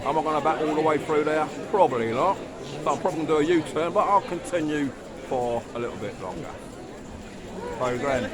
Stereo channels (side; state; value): both; identical; correlation 1.00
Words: I going to back all the way through there? Probably not. So I'm probably going to do a U-turn, but I'll continue for a little bit longer. So then,